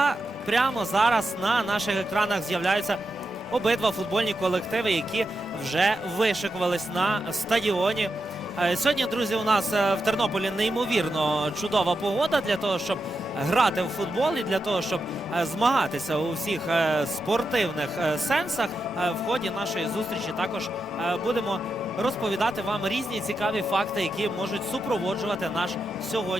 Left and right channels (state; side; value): normal; both; correlation 0.87